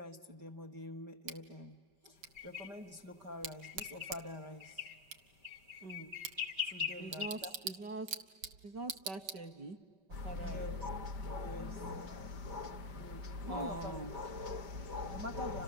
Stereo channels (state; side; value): late; left; 5.2 ms